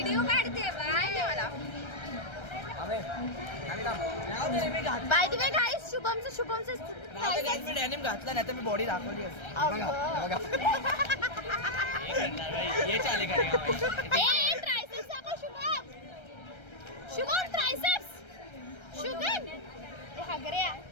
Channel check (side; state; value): right; late; 1.3 ms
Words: काढते बाय मला. थांबे. थांब थांब. रे मी घात. बाय द वे गाइस शुभमचं गाइस मी डॅनिम घातला नाही तर मी बॉडी दाखवली असती. बघा बघा. ये चाले करेगा भाई. ए ट्रायसेप्स दाखव शुभम. शुभम ट्रायसेप्स. शुभम ए हगऱ्या.